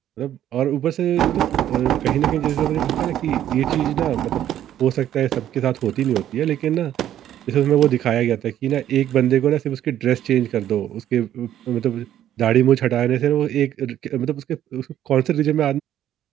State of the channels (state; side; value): quieter; left; 11.5 dB